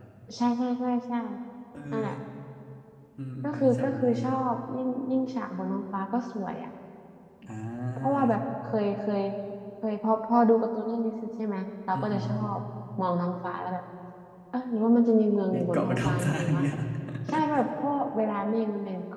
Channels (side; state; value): both; identical; correlation 1.00